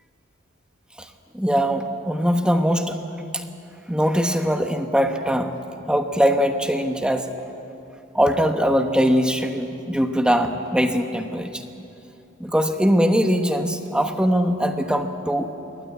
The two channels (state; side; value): normal; both; correlation 0.82